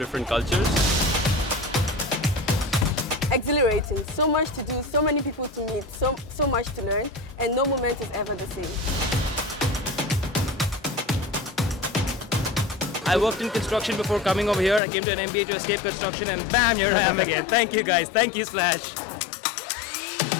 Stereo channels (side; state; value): right; drops out; at 14.8 s